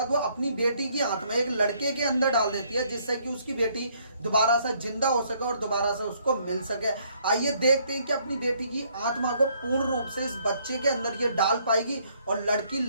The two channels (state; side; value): inverted; both; correlation -0.67